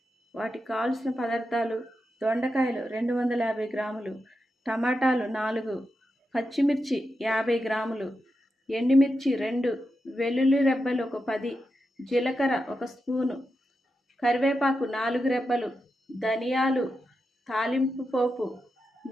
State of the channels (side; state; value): both; normal; correlation 0.88